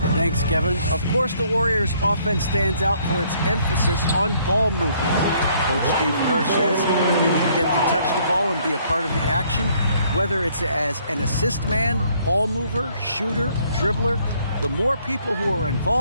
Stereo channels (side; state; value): both; inverted; correlation -0.65